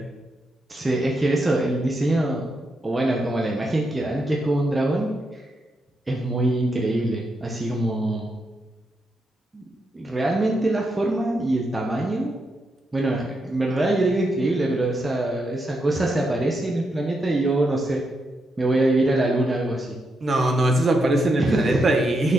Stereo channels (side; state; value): both; normal; correlation 0.83